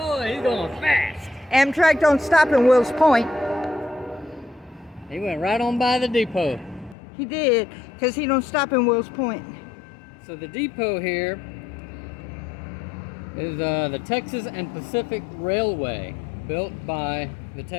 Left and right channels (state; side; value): drops out; right; at 7.0 s